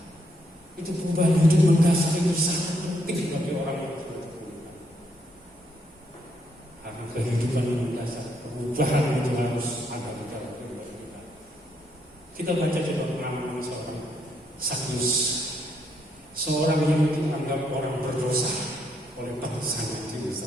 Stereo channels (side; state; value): both; normal; correlation 0.74